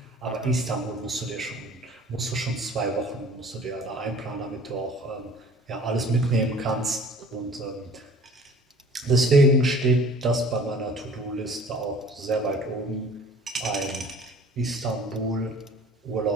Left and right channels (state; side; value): normal; both; correlation 0.48